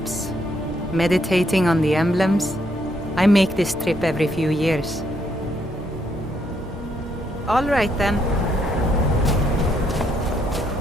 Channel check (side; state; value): both; normal; correlation 0.74